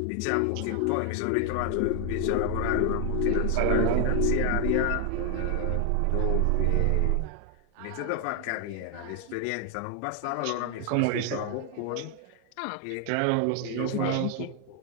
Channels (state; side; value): different; both; correlation 0.00